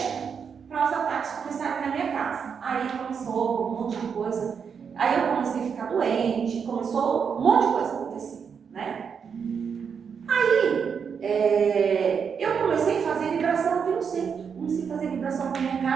para os ataques começarem na minha casa. Aí começou um monte de coisa. Aí eu comecei a ficar doente, começou um monte de coisa a acontecer, né? Aí eu comecei a fazer vibração aqui no centro. Comecei a fazer vibração na minha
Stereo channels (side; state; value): left; quieter; 6.6 dB